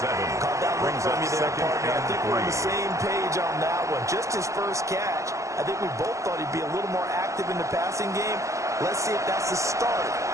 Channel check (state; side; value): late; left; 0.15 ms